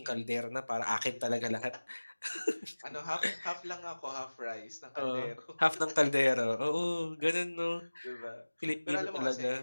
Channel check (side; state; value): both; inverted; correlation -1.00